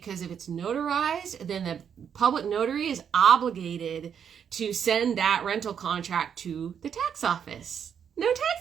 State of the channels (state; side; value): quieter; left; 7.9 dB